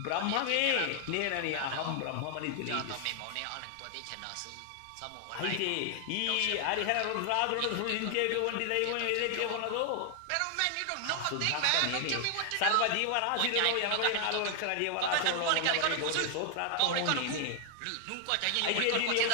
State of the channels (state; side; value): different; both; correlation 0.00